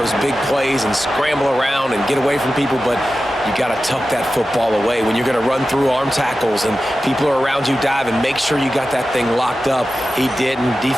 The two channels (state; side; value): normal; both; correlation 0.93